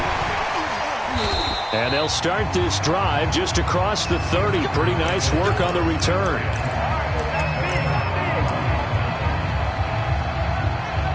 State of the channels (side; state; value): both; identical; correlation 1.00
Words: And they'll start this drive just across the 30. Pretty nice work on the return.